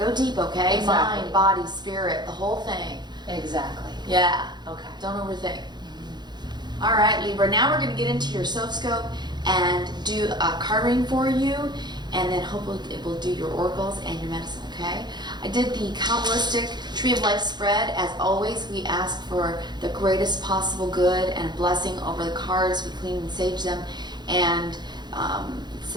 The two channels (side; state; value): left; late; 0.21 ms